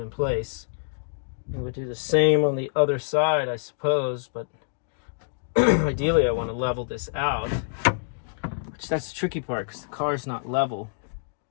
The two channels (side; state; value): right; silent; digital silence